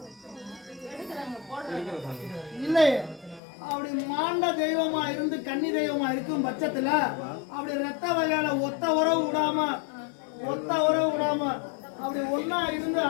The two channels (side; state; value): right; drops out; at 3.4 s